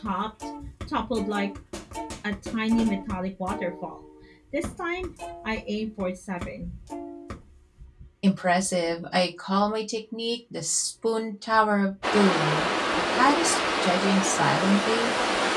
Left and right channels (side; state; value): both; identical; correlation 1.00